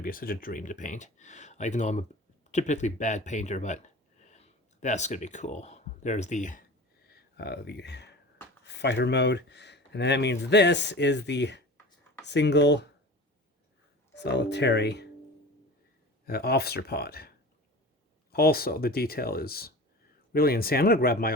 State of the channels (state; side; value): normal; both; correlation 0.35